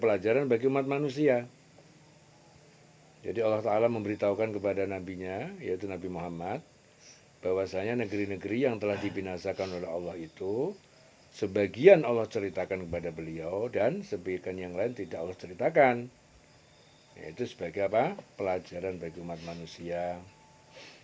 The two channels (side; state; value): both; identical; correlation 1.00